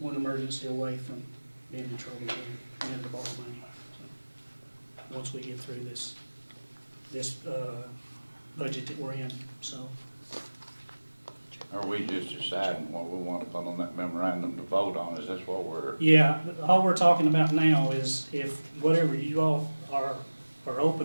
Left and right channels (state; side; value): inverted; both; correlation -1.00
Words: emergency away from being in trouble again and having to borrow money. So once we get through this this budget that we're in, so. Are we just deciding what we want to put on that memorandum to vote on? Is this what we're, Yeah, all we're talking about now is if whatever you all are